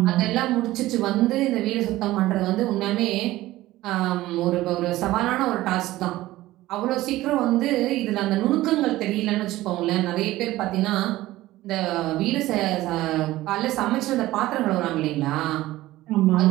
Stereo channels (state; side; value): quieter; left; 16.7 dB